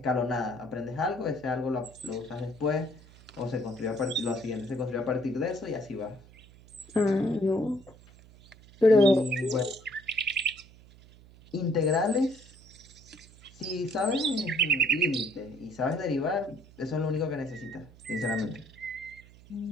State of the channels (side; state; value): right; noise; hum, 23 dB below the sound